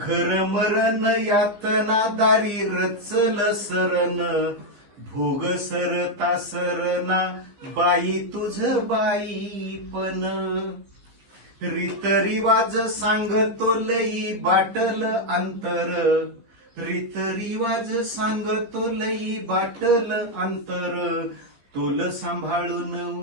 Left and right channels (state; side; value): late; left; 15 ms